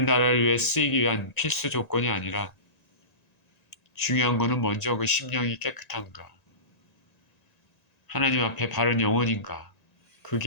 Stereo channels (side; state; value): right; late; 1.9 ms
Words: 나라를 위해 쓰이기 위한 필수 조건이 아니라 중요한 것은 먼저 그 심령이 깨끗한가, 하나님 앞에 바른 영혼인가,